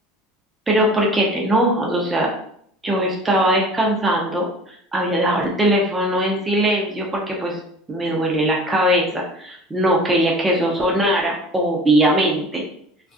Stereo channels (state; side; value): normal; both; correlation 0.43